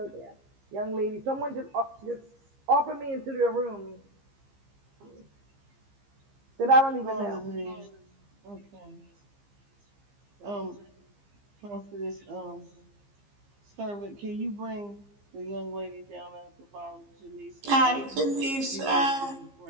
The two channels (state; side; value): late; left; 15 ms